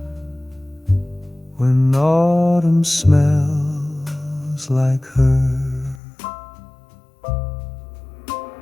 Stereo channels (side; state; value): right; drops out; at 6.0 s